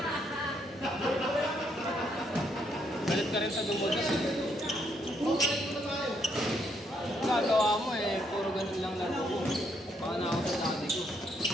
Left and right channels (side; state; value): both; normal; correlation 0.73